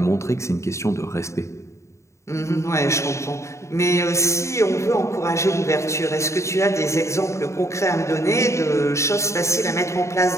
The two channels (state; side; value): late; right; 0.14 ms